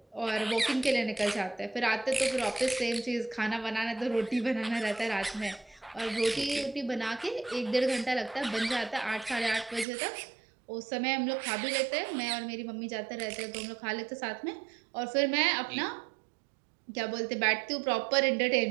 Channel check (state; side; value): drops out; left; at 9.9 s